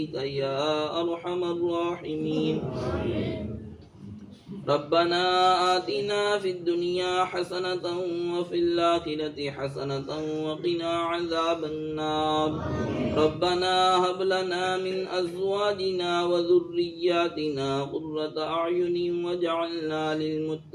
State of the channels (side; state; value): both; identical; correlation 1.00